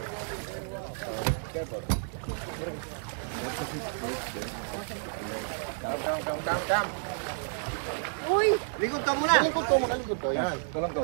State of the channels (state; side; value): silent; left; 57 dB below the other